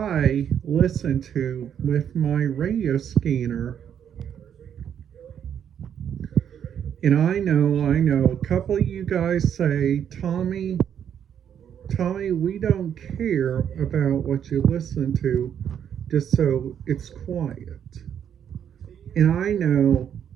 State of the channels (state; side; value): quieter; left; 8.9 dB